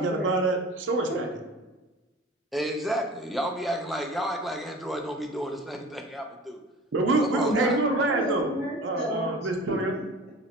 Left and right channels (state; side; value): normal; both; correlation 0.40